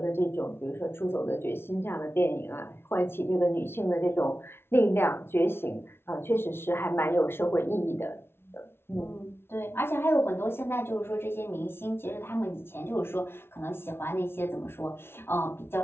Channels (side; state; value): right; late; 0.12 ms